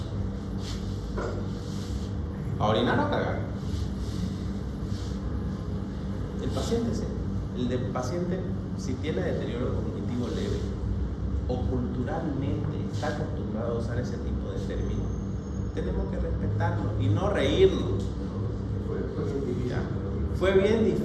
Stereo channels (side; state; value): both; identical; correlation 1.00